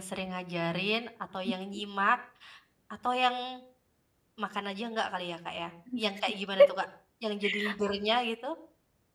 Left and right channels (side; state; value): both; identical; correlation 1.00